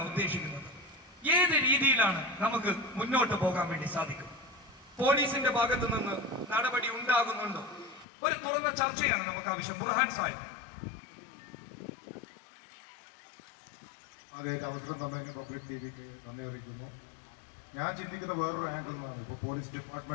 ഉദ്ദേശിക്കുന്നത്. ഏത് രീതിയിലാണ് നമുക്ക് മുന്നോട്ട് പോകാൻ വേണ്ടി സാധിക്കും? പോലീസിന്റെ ഭാഗത്ത് നിന്ന് നടപടി ഉണ്ടാകുന്നുണ്ടോ? ഒരു തുറന്ന ചർച്ചയാണ് നമുക്ക് ആവശ്യം. ബുർഹാൻ സാഹിബ്. ആദ്യമായിട്ട് അവസരം തന്നതിന് പബ്ലിക് ടിവിക്ക് നന്ദി അറിയിക്കുന്നു. ഞാൻ ചിന്തിക്കുന്ന വേറൊരു ആംഗിൾ നിന്നാണ്. ഇപ്പോൾ പോലീസ്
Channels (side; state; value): right; drops out; at 8.1 s